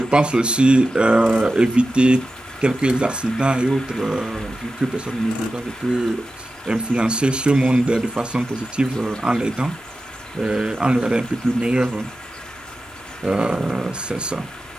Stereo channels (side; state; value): both; normal; correlation 0.93